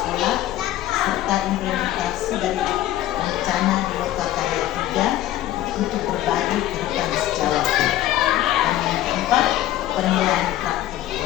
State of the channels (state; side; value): quieter; right; 13.8 dB